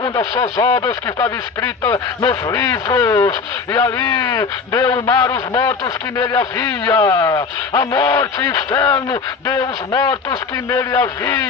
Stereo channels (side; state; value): right; quieter; 5.1 dB